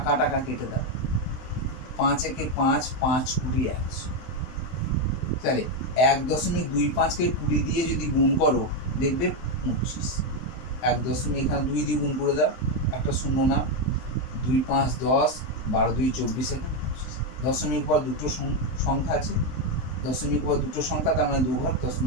টাকা কেটে দাও, 5 একে 5, 5 20 100। তাহলে 1.25কে 20 দিয়ে যদি গুণ করো দেখবে 25। 1 এখানে 2 দিয়ে গুণ করে দাও, একটা শূন্য না, 2 5 10, 12 2 24, এখানে 25। দশমিক পর দুটো সংখ্যা আছে, দশমিক পর দুটো সংখ্যা, তার মানে 2 ঘর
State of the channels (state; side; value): late; right; 23 ms